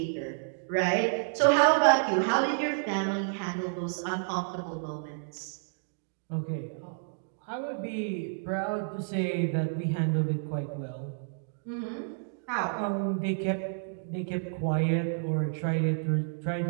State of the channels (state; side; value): silent; left; digital silence